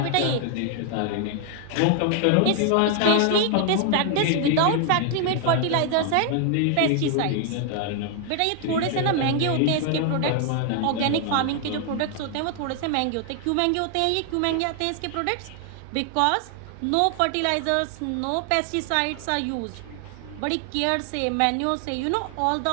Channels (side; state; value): both; different; correlation 0.00